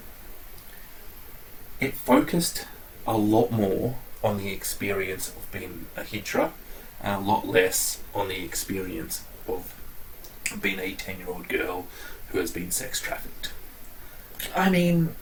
it focused a lot more on the experience of being a hijra and a lot less on the experience of being a 10-year-old girl who has been sex trafficked. I mean,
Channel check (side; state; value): both; identical; correlation 1.00